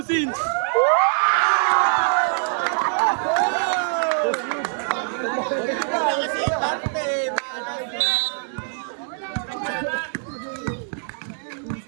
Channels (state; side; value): silent; left; digital silence